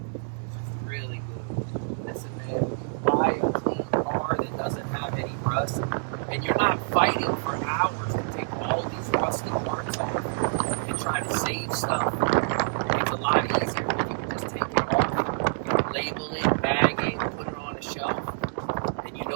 It's really good. Listen, man, when you buy a clean car that doesn't have any rust, and you're not fighting for hours to take all these rusty parts off and try to save stuff, it's a lot easier when you can just take it off, label it, bag it, put it on a shelf, and you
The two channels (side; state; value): left; silent; digital silence